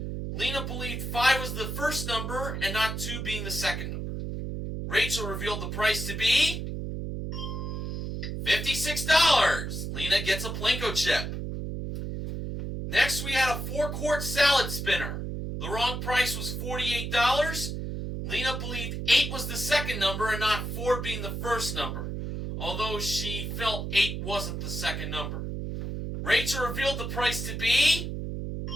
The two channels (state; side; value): noise; right; hum, 4 dB below the sound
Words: Lena believed 5 was the first number and not 2 being the second number. Rachel revealed the price to be $56. Lena gets a Plinko chip. Next we had a 4-quart salad spinner. The wrong price was $48. Lena believed 8 was the second number and not 4 being the first number, although she felt 8 wasn't the second number. Rachel revealed the price to be